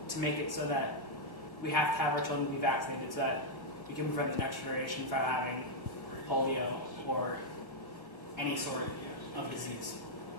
to make it so that we have to have our children be vaccinated so that we can prevent the next generation from having polio or any sort of disease.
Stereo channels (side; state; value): right; late; 1.0 ms